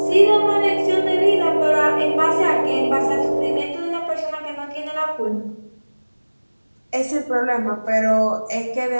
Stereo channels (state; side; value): inverted; both; correlation -1.00